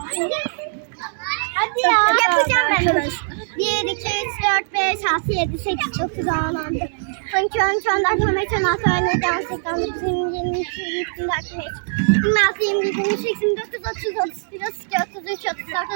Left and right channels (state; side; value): silent; left; digital silence